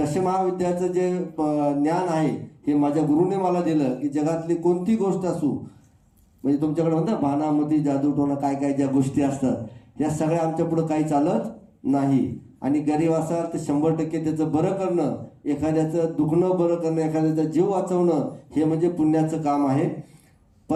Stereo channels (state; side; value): identical; both; correlation 1.00